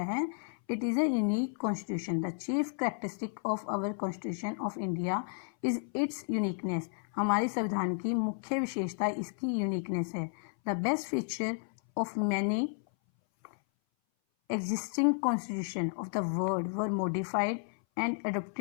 है? It is a unique constitution. The chief characteristic of our constitution of India is its uniqueness. हमारे संविधान की मुख्य विशेषता इसकी यूनिकनेस है. The best feature of many existing constitution of the world were modified and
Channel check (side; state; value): right; silent; 56 dB below the other